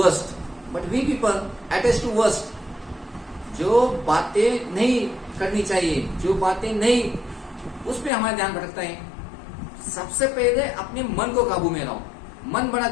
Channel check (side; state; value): right; drops out; at 8.1 s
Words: But we people attach to worst. जो बातें नहीं करनी चाहिए, जो बातें नहीं, उस पर हमारा ध्यान भटकता है. सबसे पहले अपने मन को काबू में रहो. मन बड़ा